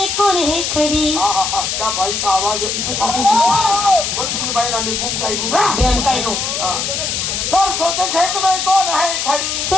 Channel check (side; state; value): left; noise; hiss, 1 dB below the sound